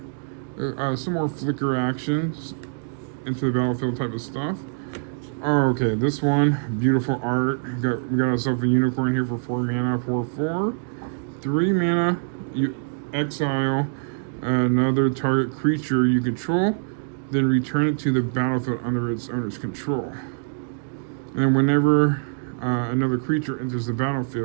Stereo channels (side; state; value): left; silent; digital silence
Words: Some more flicker actions into the battlefield type of stuff. Oh, okay, this one, beautiful art. We got ourselves a unicorn here for 4 mana, 4/4. 3 mana, you exile another target creature you control, then return it to the battlefield under its owner's control. And whenever another creature enters the